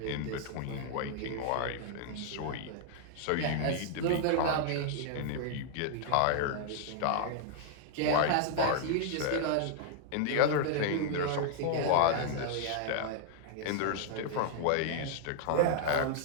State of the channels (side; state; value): both; different; correlation -0.01